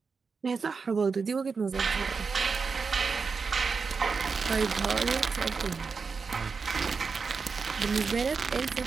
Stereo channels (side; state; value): left; quieter; 5.0 dB